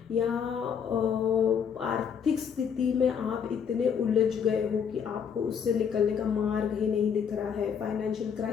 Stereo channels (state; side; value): quieter; right; 7.3 dB